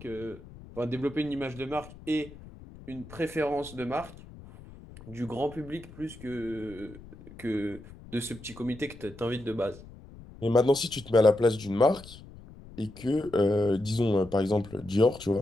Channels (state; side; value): noise; left; rumble, 18 dB below the sound